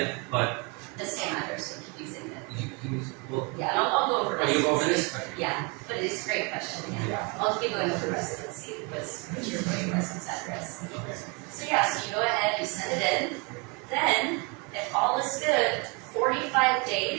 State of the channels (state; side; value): quieter; left; 31.1 dB